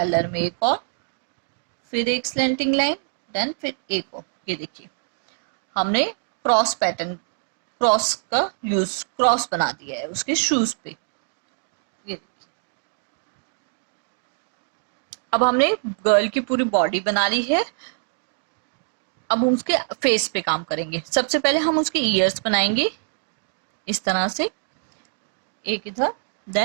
में एक और, फिर एक स्लैंटिंग लाइन, देन फिर एक और। ये देखिए हमने क्रॉस पैटर्न, क्रॉस का यूज, क्रॉस बना दिया है उसके शूज पे। ये देखिए, अब हमने गर्ल की पूरी बॉडी बना ली है। अब हम उसके फेस पे काम करेंगे। सबसे पहले हम उसके ईयर्स बनाएंगे इस तरह से, एक इधर,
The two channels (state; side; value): silent; left; digital silence